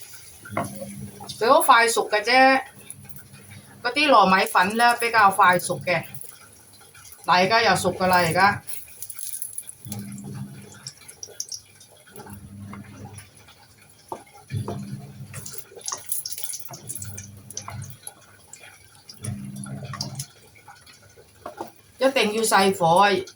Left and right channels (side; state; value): both; identical; correlation 1.00